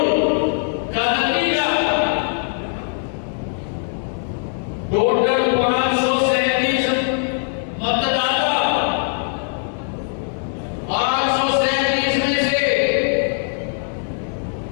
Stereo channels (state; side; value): silent; right; 65 dB below the other